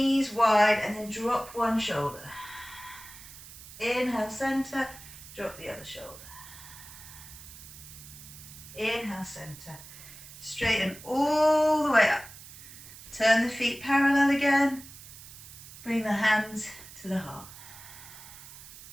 wide and then drop one shoulder. Inhale, center. Drop the other shoulder. Inhale, center. Straighten all the way up. Turn the feet parallel again. Bring the hands to the heart.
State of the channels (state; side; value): noise; right; hiss, 16 dB below the sound